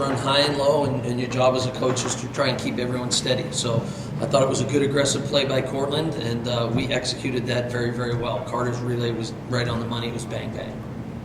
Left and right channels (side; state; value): both; identical; correlation 1.00